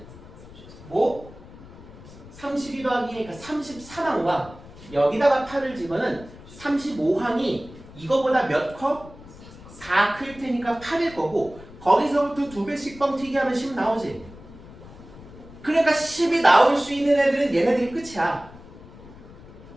뭐 32 더하기니까 33항과 여기다가 8을 집어는 35항이 이거보다 몇 컵? 4 클 테니까 8일 거고, 거기서부터 2배씩 뻥튀기 하면 10 나오지. 그러니까 10이 나올 수 있는 애들은 얘네들이 끝이야.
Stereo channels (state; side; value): noise; left; rumble, 18 dB below the sound